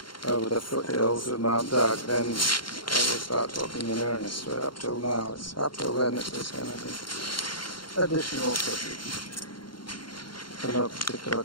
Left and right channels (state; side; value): late; right; 0.72 ms